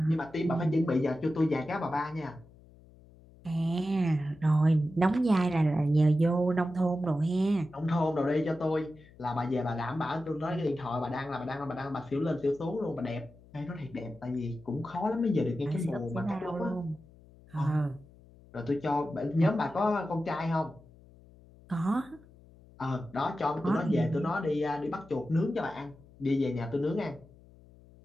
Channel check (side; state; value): left; noise; hum, 24 dB below the sound